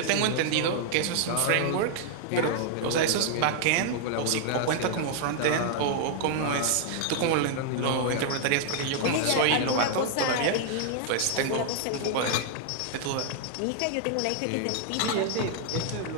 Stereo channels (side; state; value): both; different; correlation 0.00